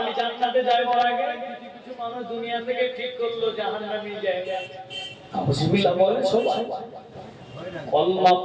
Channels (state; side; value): identical; both; correlation 1.00